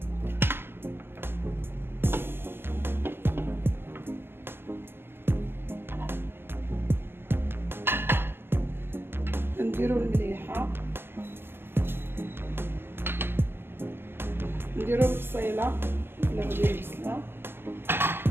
نديرو المليحه، نديرو البصيله ولا غادي البصله،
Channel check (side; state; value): left; late; 0.11 ms